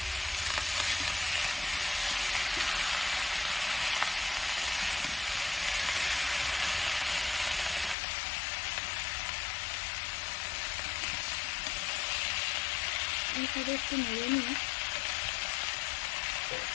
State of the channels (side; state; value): right; drops out; at 8.0 s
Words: এইভাবে একটু নেড়ে নিয়ে